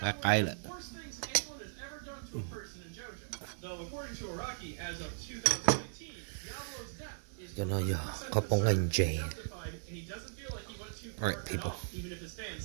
cái lại. Cho nó giờ khâu bông lên Jane. Alright, people.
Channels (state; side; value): silent; left; digital silence